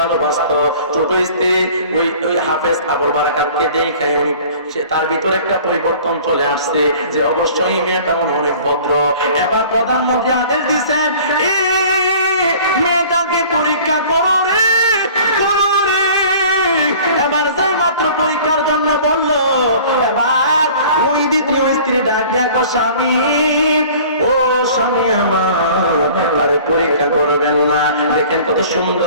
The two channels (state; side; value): inverted; both; correlation -0.47